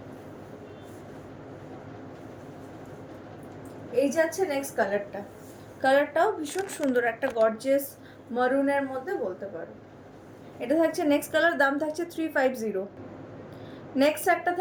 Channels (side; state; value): both; identical; correlation 1.00